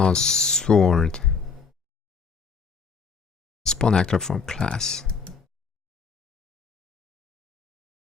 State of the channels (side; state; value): right; quieter; 5.4 dB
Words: sword. Spawn actor from class.